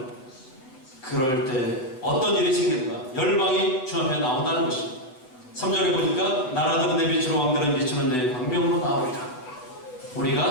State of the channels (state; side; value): late; right; 7.9 ms